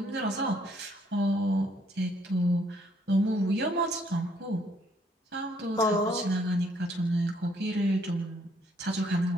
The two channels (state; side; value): normal; both; correlation 0.67